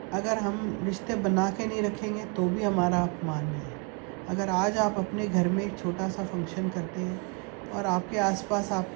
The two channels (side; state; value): left; quieter; 33.9 dB